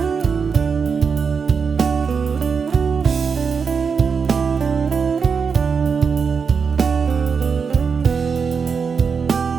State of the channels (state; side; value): quieter; left; 5.8 dB